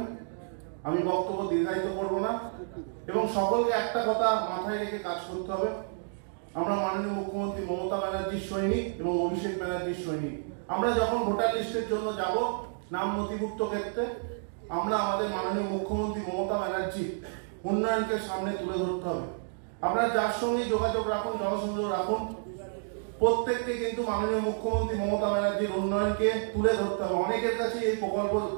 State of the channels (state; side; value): silent; left; digital silence